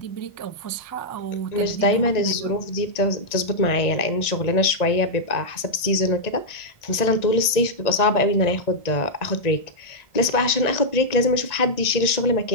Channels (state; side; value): late; right; 1.9 ms